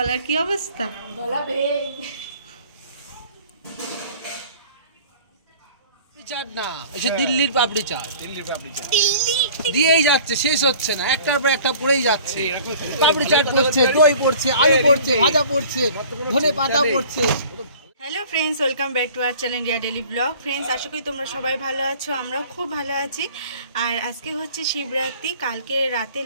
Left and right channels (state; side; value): inverted; both; correlation -0.47